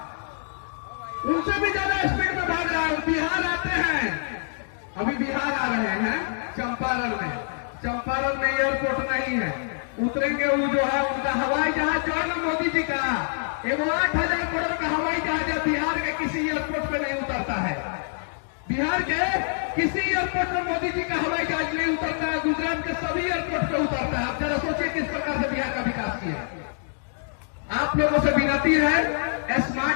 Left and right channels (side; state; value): right; silent; digital silence